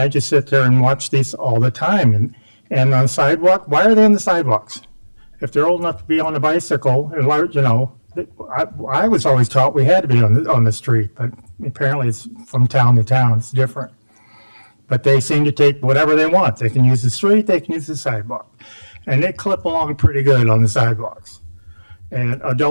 just sit there and watch these all the time. And on the sidewalk, why are they on the sidewalks? If they're old enough to be on a bicycle, I was always taught we had to be on the street, but apparently it's from town to town. It's different. But they seem to take whatever they want. They can use the street, they can use the sidewalk. And they clip along pretty good on the sidewalks. And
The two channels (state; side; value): inverted; both; correlation -1.00